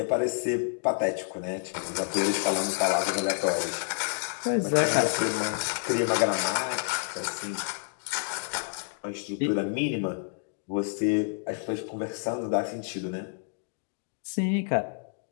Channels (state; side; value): silent; right; digital silence